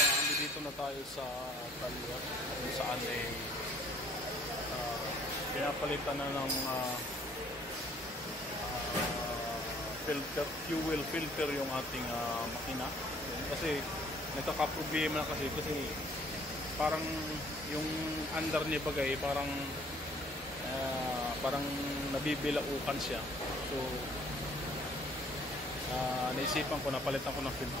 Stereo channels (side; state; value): both; normal; correlation 0.58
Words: dito na tayo sa talyer kung saan pinapalitan na ng filter, fuel filter yung ating makina. Kasi nagkakaproblema na kasi parang yung under niya bagay parang nabibilaukan siya. So naisipan ko na palitan ko ng